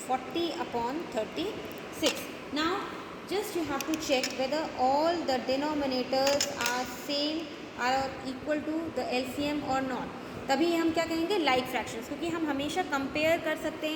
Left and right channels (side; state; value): both; identical; correlation 1.00